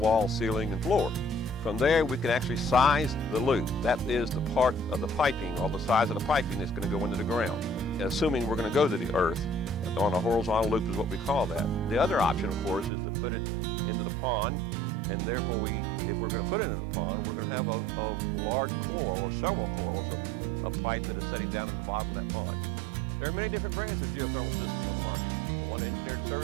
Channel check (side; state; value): left; drops out; at 12.9 s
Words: ceiling, and floor. From there, we can actually size the loop. That is the part of the piping, or the size of the piping that's going to go into the ground, assuming we're going to go to the earth. On a horizontal loop is what we call that. The other option, of course, is to put it into the pond, and therefore if we're going to put it in the pond, we're going to have a large coil or several coils of a pipe that is setting down in the bottom of that pond. There are many different brands of geothermal systems on the market. The one Engineered